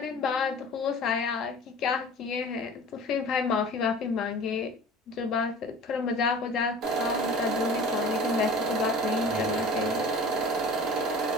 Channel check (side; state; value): both; normal; correlation 0.41